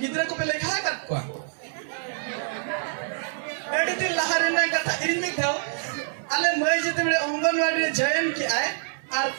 गिद्रा को पे लेखा कर को एडी दिन लहारे ना कथा इन में था अले मई जते बड़े अंगनवाड़ी रे जयन की आए और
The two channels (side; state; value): left; silent; 61 dB below the other